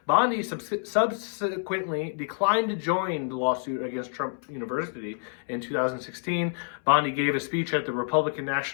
Bondi subsequently declined to join the lawsuit against Trump University in 2016. Bondi gave a speech at the Republican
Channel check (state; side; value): silent; right; 60 dB below the other